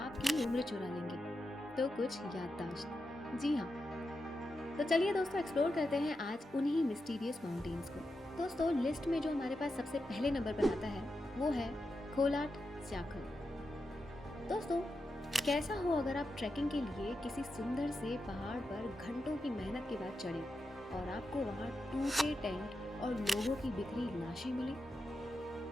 उम्र चुरा लेंगे, तो कुछ याददाश्त। जी हाँ, तो चलिए दोस्तों एक्सप्लोर करते हैं आज उन्हीं मिस्टीरियस माउंटेन्स को। दोस्तों लिस्ट में जो हमारे पास सबसे पहले नंबर पर आता है वो है खोलाट स्याखल। दोस्तों कैसा हो अगर आप ट्रैकिंग के लिए किसी सुंदर से पहाड़ पर घंटों की मेहनत के बाद चढ़े और आपको वहां टूटे टेंट और लोगों की बिखरी लाशें मिली।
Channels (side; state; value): both; normal; correlation 0.88